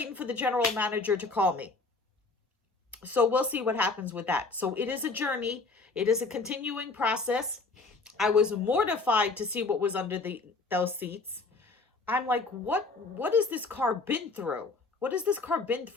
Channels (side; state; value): right; quieter; 3.7 dB